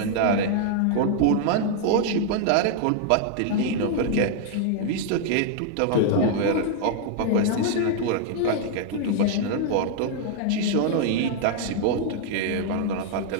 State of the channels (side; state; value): both; different; correlation 0.00